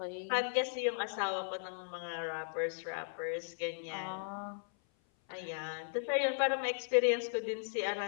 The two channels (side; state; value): right; silent; 53 dB below the other